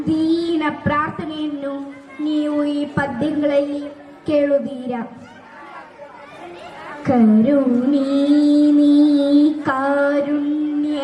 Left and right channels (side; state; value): both; identical; correlation 1.00